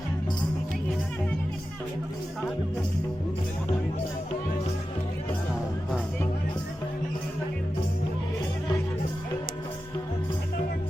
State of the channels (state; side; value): normal; both; correlation 0.92